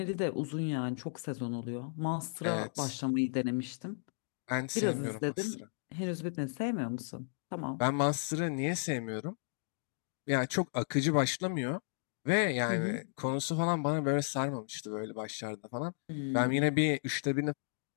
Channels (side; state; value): right; silent; digital silence